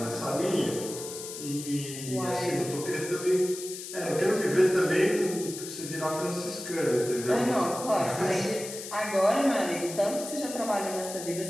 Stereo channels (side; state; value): left; noise; hiss, 10 dB below the sound